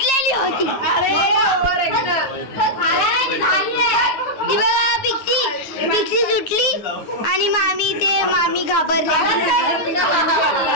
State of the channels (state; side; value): late; right; 9.6 ms